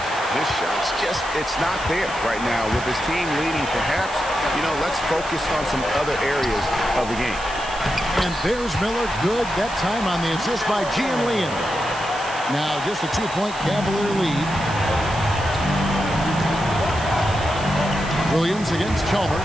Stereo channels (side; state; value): right; noise; hiss, 16 dB below the sound